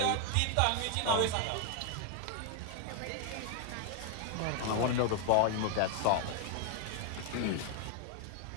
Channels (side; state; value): both; different; correlation 0.00